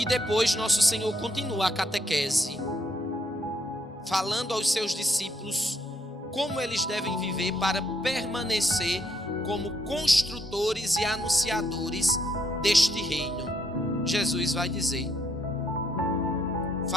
depois nosso Senhor continua a catequese, falando aos seus discípulos como eles devem viver para permanecer como construtores e anunciadores deste reino. Jesus vai dizer:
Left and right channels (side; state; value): both; normal; correlation 0.73